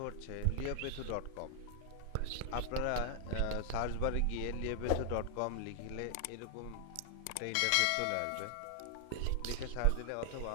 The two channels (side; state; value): both; different; correlation 0.00